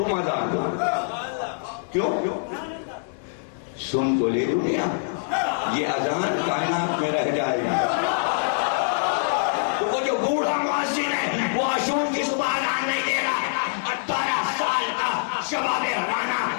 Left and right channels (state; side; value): silent; right; digital silence